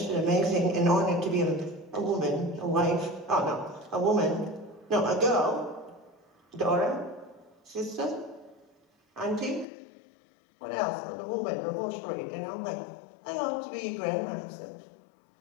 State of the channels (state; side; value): drops out; right; at 9.7 s